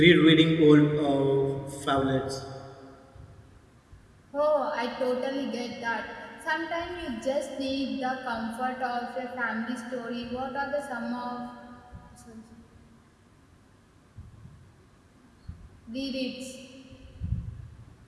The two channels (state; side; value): identical; both; correlation 1.00